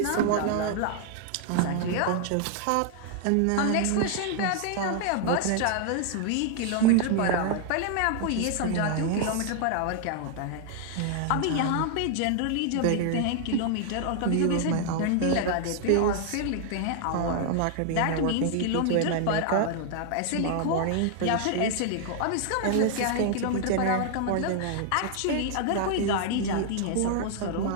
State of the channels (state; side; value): different; both; correlation 0.00